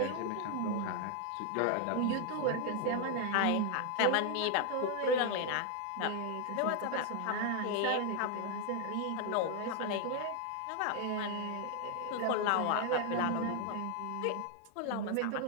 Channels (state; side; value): different; both; correlation 0.00